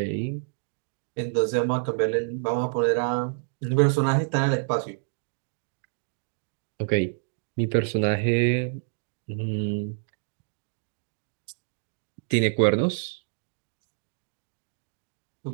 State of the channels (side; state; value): left; silent; 59 dB below the other